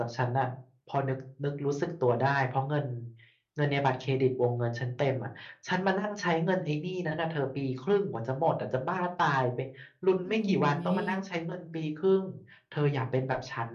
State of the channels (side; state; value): both; identical; correlation 1.00